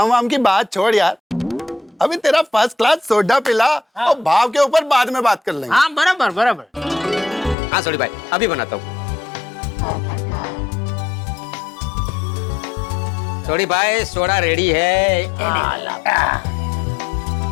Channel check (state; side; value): drops out; right; at 7.6 s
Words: वाम की बात छोड़ यार, अभी तेरा फर्स्ट क्लास सोडा पिला और भाव के ऊपर बाद में बात कर लेंगे। हाँ बराबर बराबर। हाँ सॉरी भाई, अभी बनाता हूँ। सॉरी भाई, सोडा रेडी है।